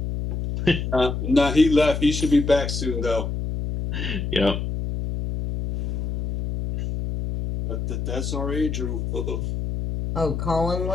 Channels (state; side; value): noise; left; hum, 3 dB below the sound